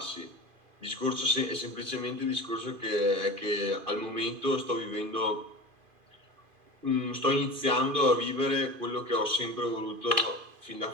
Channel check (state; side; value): late; left; 2.5 ms